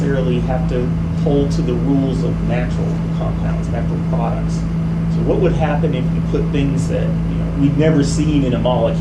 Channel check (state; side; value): identical; both; correlation 1.00